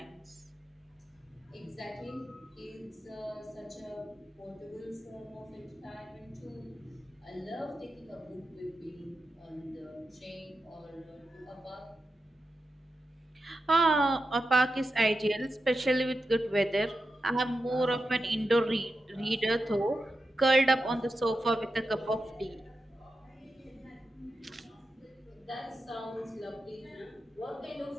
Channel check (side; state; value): both; normal; correlation 0.89